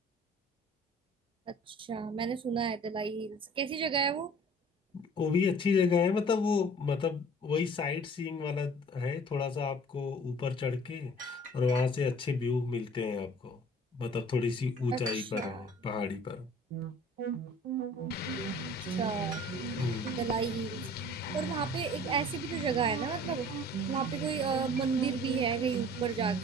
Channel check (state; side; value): normal; both; correlation 0.49